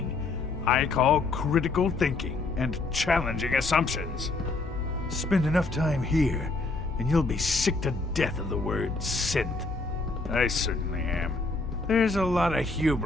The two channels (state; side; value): quieter; right; 3.5 dB